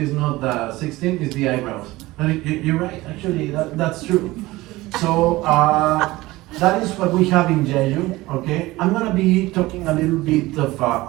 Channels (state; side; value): quieter; left; 19.2 dB